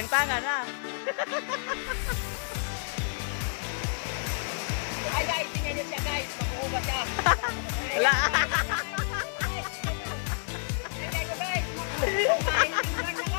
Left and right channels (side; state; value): right; silent; digital silence